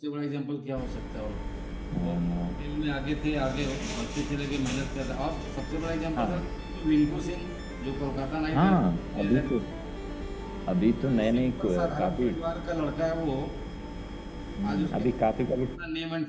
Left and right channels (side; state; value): both; identical; correlation 1.00